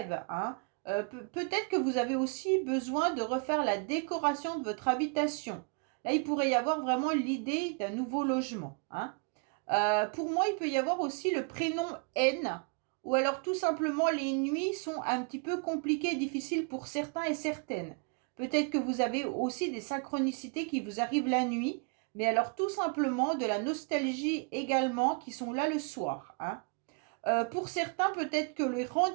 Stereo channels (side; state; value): left; quieter; 35.1 dB